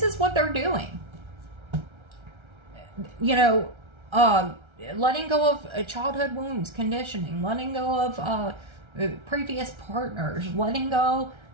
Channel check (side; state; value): left; late; 1.3 ms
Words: is what they're doing. You know, letting go of childhood wounds, conditioning, letting go of previous partners, letting go